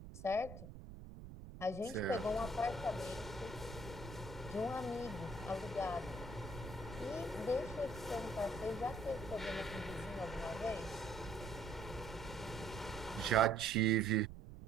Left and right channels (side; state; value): right; noise; rumble, 12 dB below the sound